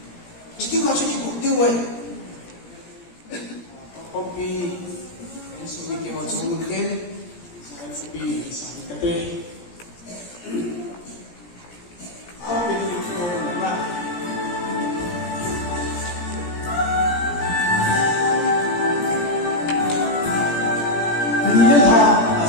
chỉ tiêu vào cho những mục tiêu rồi copy cái số mình tiêu vào cho mình thêm sai copy sai cái tê copy những câu là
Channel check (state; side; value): late; right; 17 ms